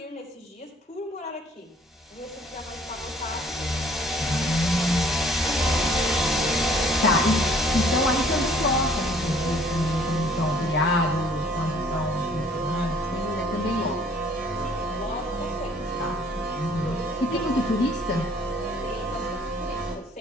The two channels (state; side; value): normal; both; correlation 0.57